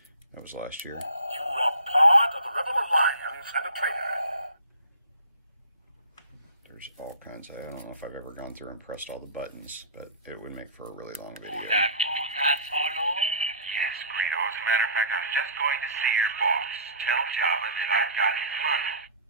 last year. You are part of the Rebel Alliance and a traitor. There's all kinds. I don't know if I've ever gone through and pressed all the buttons, but it would make for a really long video. That Solo? Yes, Greedo. As a matter of fact, I was just going to see your boss. Tell Jabba that I've got his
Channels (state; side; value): inverted; both; correlation -0.41